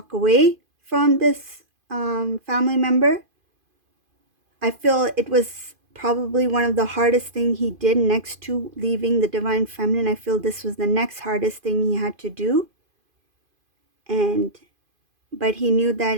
away from this family member. I feel it was probably one of the hardest thing he did next to leaving the divine feminine. I feel this was the next hardest thing he had to do, and but he knew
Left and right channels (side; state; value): left; late; 2.5 ms